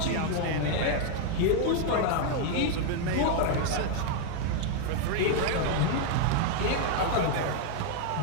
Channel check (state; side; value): different; both; correlation 0.00